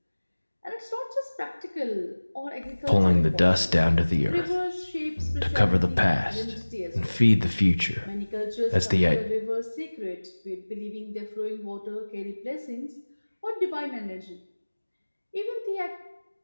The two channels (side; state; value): both; inverted; correlation -1.00